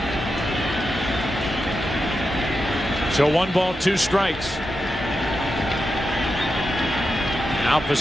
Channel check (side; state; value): both; normal; correlation 0.88